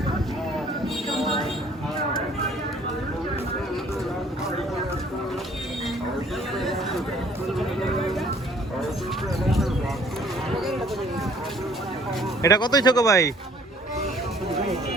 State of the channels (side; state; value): both; normal; correlation 0.57